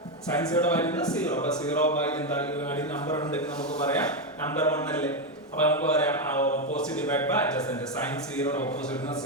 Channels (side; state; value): both; normal; correlation 0.07